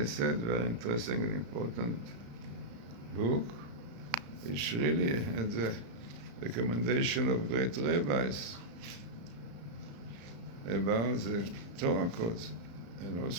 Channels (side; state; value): left; late; 35 ms